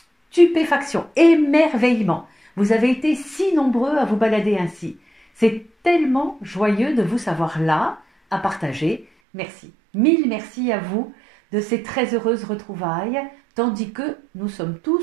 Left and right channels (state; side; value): drops out; left; at 9.1 s